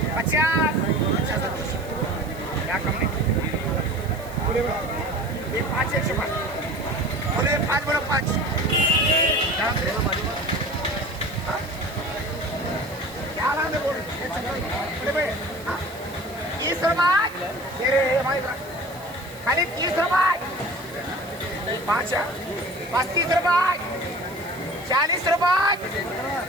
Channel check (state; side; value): noise; right; hiss, 20 dB below the sound